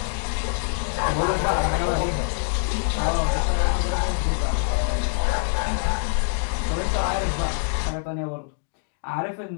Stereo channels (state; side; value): silent; right; digital silence